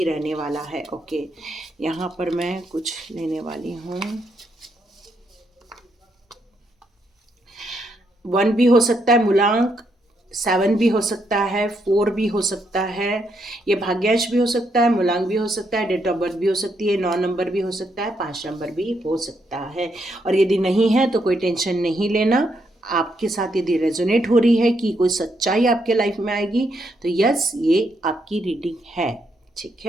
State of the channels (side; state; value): both; normal; correlation 0.77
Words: रहने वाला है। ओके, यहाँ पर मैं कुछ लेने वाली हूँ। 1 भी हो सकता है मूलांक, 7 भी हो सकता है, 4 भी हो सकता है, ये भाग्यांश भी हो सकता है, मूलांक भी हो सकता है, डेट ऑफ बर्थ भी हो सकती है, 9 नंबर भी हो सकता है, 5 नंबर भी हो सकता है। और यदि नहीं है तो कोई टेंशन नहीं लेना। आपके साथ यदि रेजोनेट हो रही है कि कोई सच्चाई आपके लाइफ में आएगी तो यस, ये आपकी रीडिंग है। ठीक